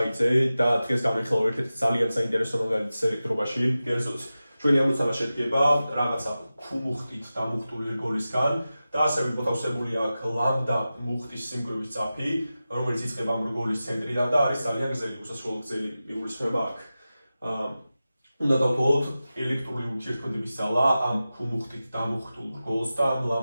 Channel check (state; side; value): inverted; both; correlation -0.94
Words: და დღეს განვიხილავ ერთ-ერთ ძალიან საინტერესო მაგალითს ელექტრობაში. კერძოდ, ჩვენი ამოცანა შედგება რაღაცა ქუმუხტით დამუხტული რგოლისგან და ასევე მოთავსებული აქვს ლამბდა მუხტის სიმკვრივის წაფი, რომელიც იწყება ამ რგოლის ცენტრიდან და არის ძალიან გრძელი, უსასრულო გრძელი მიგულისხმება აქ. უნდა დავთვალოთ ელექტრული ურთიერთქმედების ძალა ამ ქუმუხტით დამუხტულ რგოლს და ამ